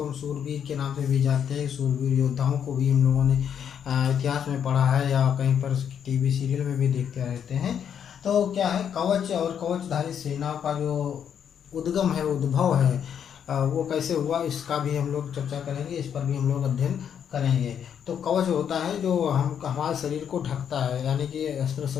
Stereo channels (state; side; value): quieter; right; 8.4 dB